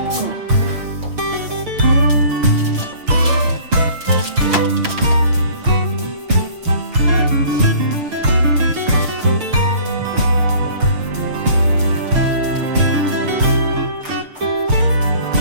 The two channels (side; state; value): left; late; 6.7 ms